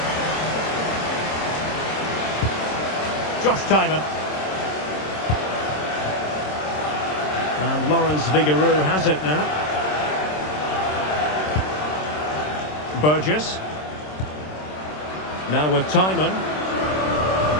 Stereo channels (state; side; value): late; right; 26 ms